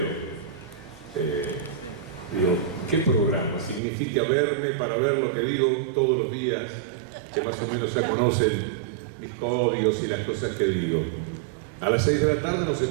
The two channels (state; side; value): drops out; left; at 3.8 s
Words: Digo, ¿qué programa? Significa verme para ver lo que digo todos los días, que más o menos ya conocen mis códigos y las cosas que digo. A las 6 de la tarde no se